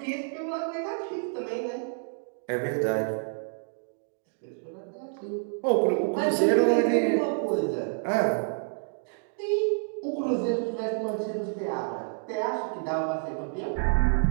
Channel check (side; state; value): left; silent; digital silence